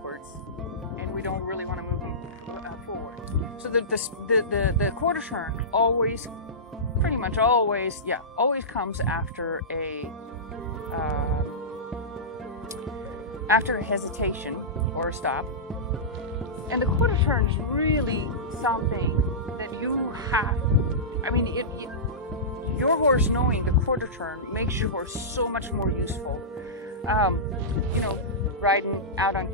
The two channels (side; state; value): both; normal; correlation -0.18